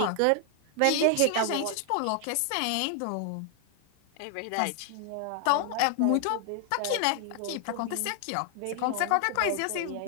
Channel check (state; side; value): different; both; correlation 0.00